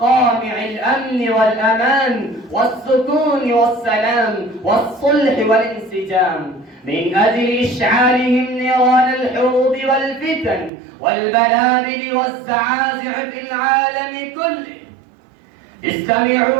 الأمن والأمان والسكون والسلام والصلح والانسجام، من أجل إشعالهم نيران الحروب والفتن والبلابل والزعازع في العالم كله.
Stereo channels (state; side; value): drops out; left; at 10.7 s